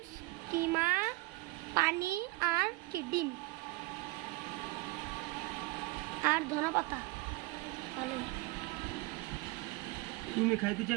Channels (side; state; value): left; quieter; 22.6 dB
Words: কিমা, পানি আর কি ডিম আর ধনেপাতা। ভালো। তুমি খাইতে